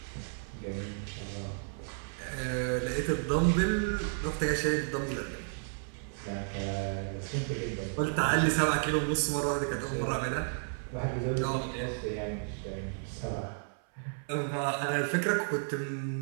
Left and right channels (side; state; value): left; silent; 56 dB below the other